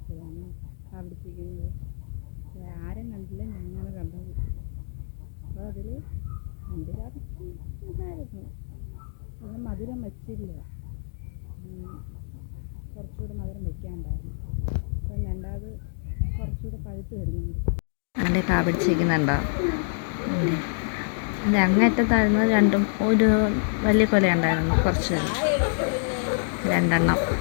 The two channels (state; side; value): silent; right; digital silence